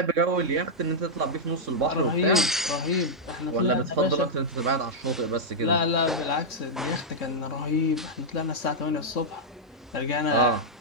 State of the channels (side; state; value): both; normal; correlation -0.06